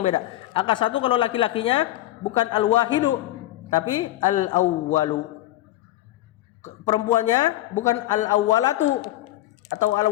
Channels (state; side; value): quieter; right; 15.2 dB